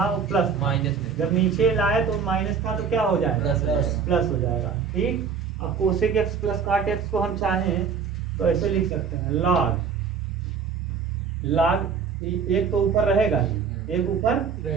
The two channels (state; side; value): quieter; left; 6.2 dB